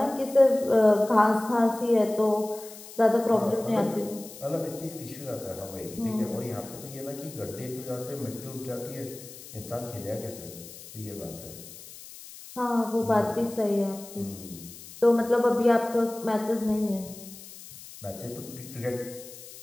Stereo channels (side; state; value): left; noise; hiss, 16 dB below the sound